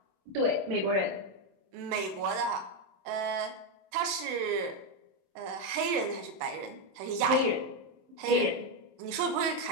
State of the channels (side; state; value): left; late; 26 ms